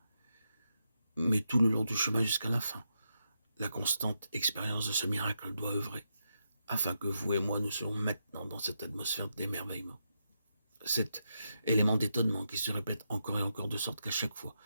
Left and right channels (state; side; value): inverted; both; correlation -0.84